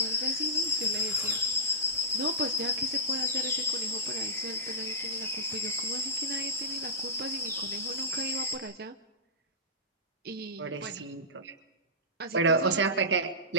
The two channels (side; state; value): both; normal; correlation -0.19